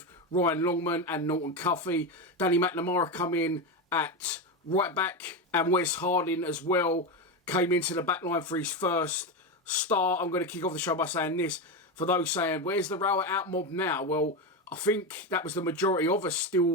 Ryan Longman and Norton Cuffey. Danny McNamara come in at right back, and Wes Harding as well came into the back line for his first start. I'm going to kick off the show by saying this. For those saying, where's the Rower out mob now? Well, I think that was the majority of us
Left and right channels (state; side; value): normal; both; correlation 0.14